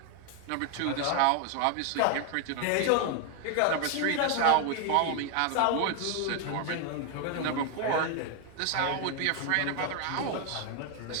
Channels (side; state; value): both; different; correlation 0.01